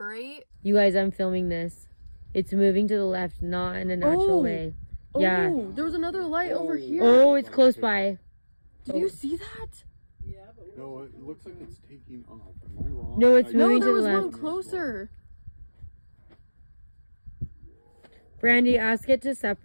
You guys, I'm filming this. It's moving to the left, not in a natural way. Yeah. Oh, there was another light over here. Oh, it's close by. Did you see that? Yeah, but No, it looks like it's taking off. Am I wrong? No, it's No, moving there to the was one left. closer. Brandy, ask it to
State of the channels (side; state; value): both; inverted; correlation -1.00